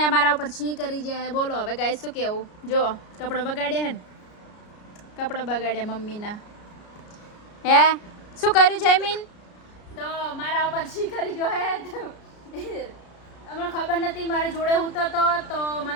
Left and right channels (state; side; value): late; right; 33 ms